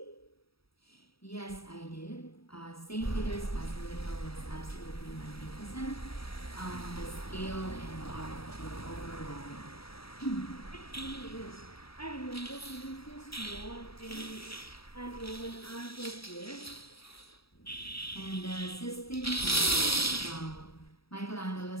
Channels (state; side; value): late; right; 0.76 ms